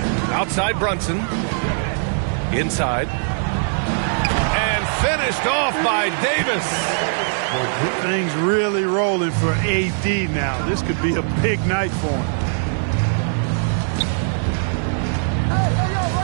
Outside Brunson. Inside. And finished off by Davis. Things really rolling for AD now. This could be a big night for him.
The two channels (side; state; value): left; silent; digital silence